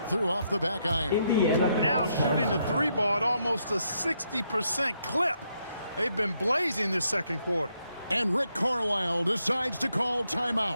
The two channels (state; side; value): inverted; both; correlation -0.77